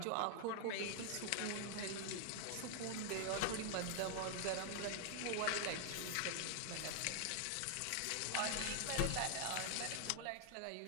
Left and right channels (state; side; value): different; both; correlation 0.00